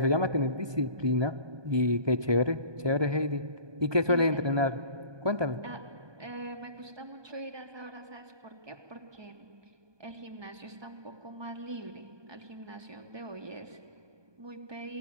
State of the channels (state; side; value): late; left; 1.2 ms